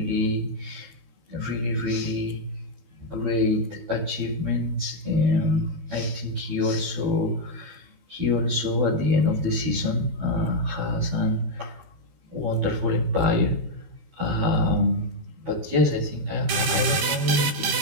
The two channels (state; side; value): late; left; 13 ms